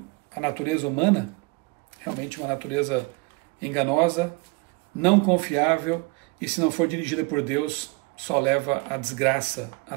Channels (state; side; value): quieter; left; 26.0 dB